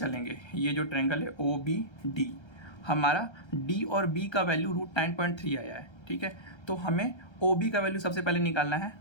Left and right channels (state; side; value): late; right; 1.3 ms